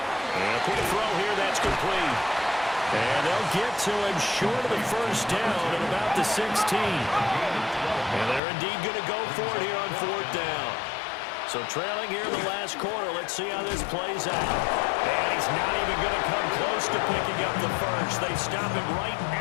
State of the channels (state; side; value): drops out; right; at 8.4 s